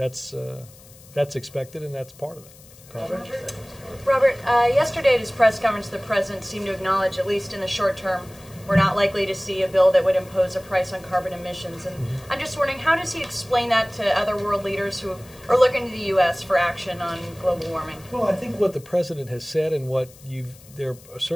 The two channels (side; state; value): left; noise; hiss, 23 dB below the sound